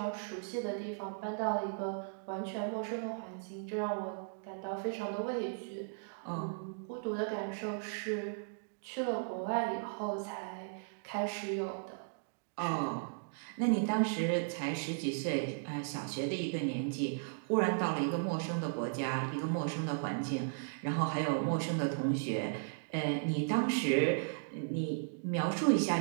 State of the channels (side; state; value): left; silent; digital silence